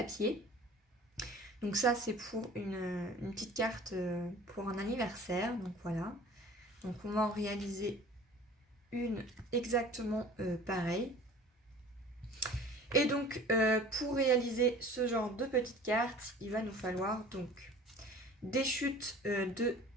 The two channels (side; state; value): both; normal; correlation 0.45